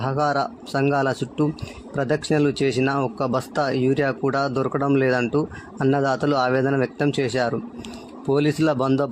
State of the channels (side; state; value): both; identical; correlation 1.00